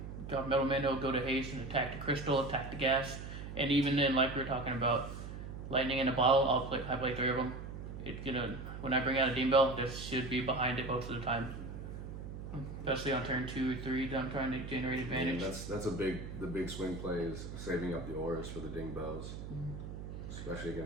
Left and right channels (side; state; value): right; noise; hum, 9 dB below the sound